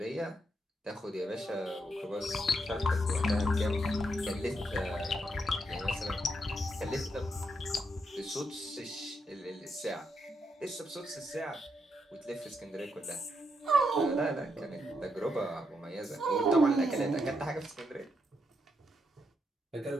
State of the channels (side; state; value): both; normal; correlation 0.80